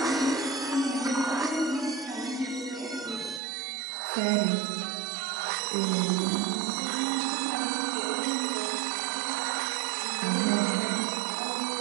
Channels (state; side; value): drops out; left; at 3.4 s